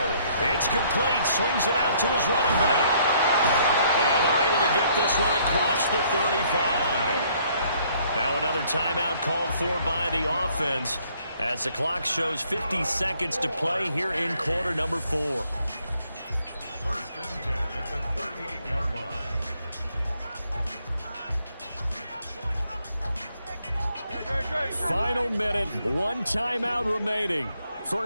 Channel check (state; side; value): inverted; both; correlation -0.65